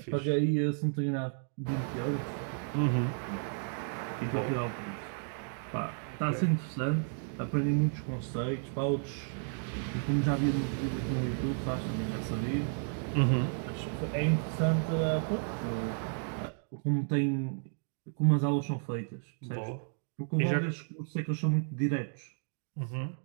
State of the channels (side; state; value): left; silent; 56 dB below the other